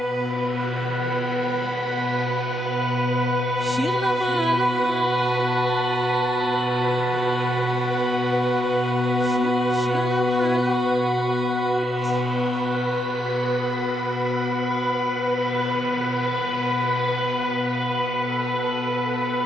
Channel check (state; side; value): normal; both; correlation 0.80